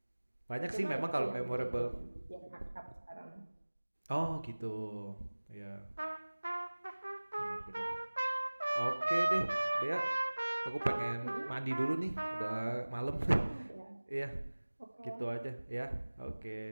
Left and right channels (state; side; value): inverted; both; correlation -1.00